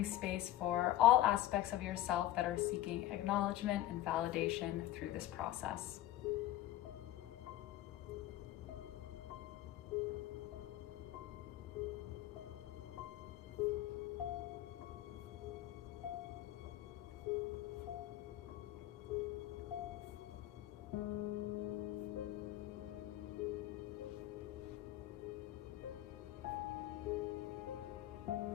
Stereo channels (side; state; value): right; quieter; 14.2 dB